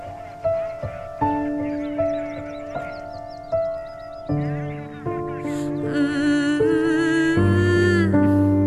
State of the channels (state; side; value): identical; both; correlation 1.00